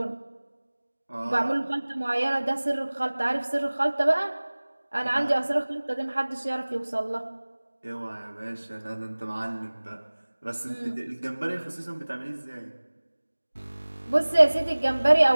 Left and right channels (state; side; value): inverted; both; correlation -1.00